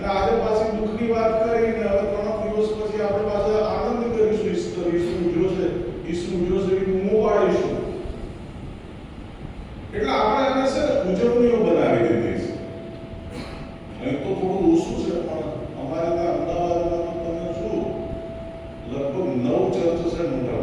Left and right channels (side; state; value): both; identical; correlation 1.00